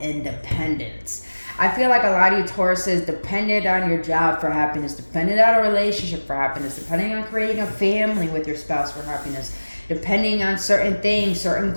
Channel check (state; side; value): inverted; both; correlation -1.00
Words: I feel like a lot of you Tauruses depended on your job for happiness, depended on a relationship for happiness, depending on creating a family with your spouse for happiness, depending on certain things, certain